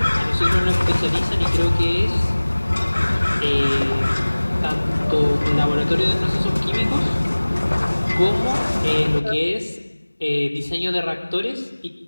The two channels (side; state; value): both; inverted; correlation -1.00